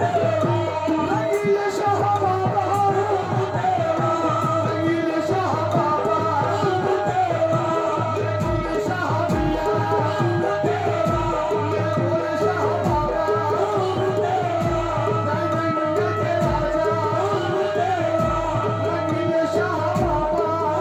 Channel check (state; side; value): identical; both; correlation 1.00